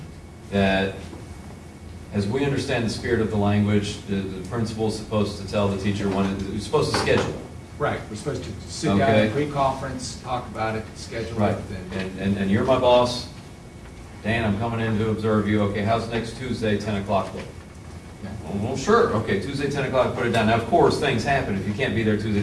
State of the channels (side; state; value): both; identical; correlation 1.00